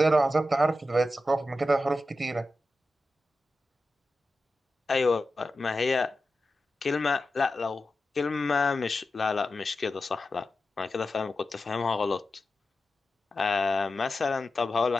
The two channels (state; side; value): normal; both; correlation 0.92